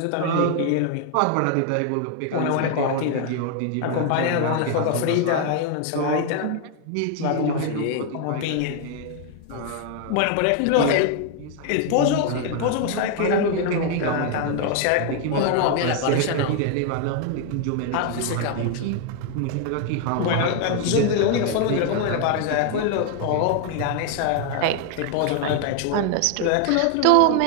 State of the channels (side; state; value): both; different; correlation 0.00